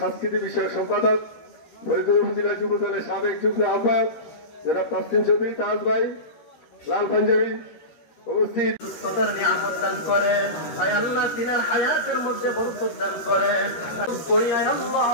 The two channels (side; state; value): right; late; 13 ms